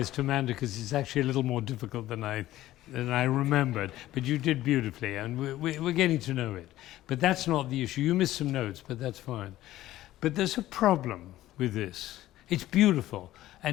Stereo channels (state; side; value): quieter; right; 14.9 dB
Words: to Amanda because it's actually a little more difficult than I remembered. But you did beautifully, and we're getting to know it. But that's not the issue. You missed some notes, but that's fine. But there's a problem with this. It's beautiful,